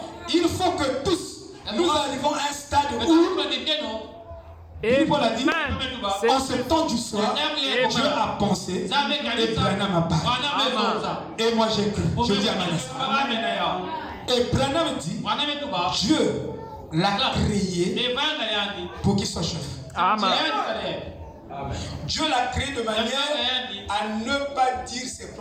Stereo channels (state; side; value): identical; both; correlation 1.00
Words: il faut que tous, nous arrivons à un stade où Paul a dit, en ce temps du soir, Dieu a pensé et Branham a parlé. Et moi j'ai cru. Je dis à Manasseh. Et Branham dit, Dieu l'a créé pour qu'il soit chef. Amen. Dieu l'a créé de manière à ne pas dire ses